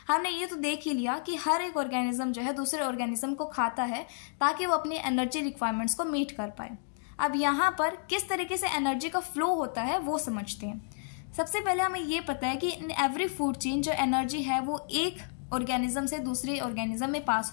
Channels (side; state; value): right; silent; digital silence